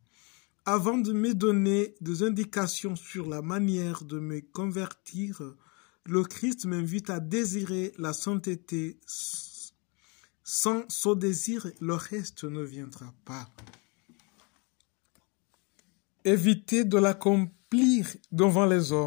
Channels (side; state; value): right; quieter; 31.4 dB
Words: Avant de me donner des indications sur la manière de me convertir, le Christ m'invite à désirer la sainteté. Sans ce désir, le reste ne viendra pas. Évitez de l'accomplir devant les